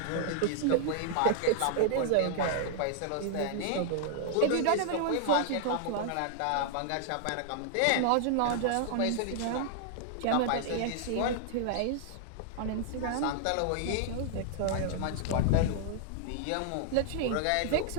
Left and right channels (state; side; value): different; both; correlation -0.01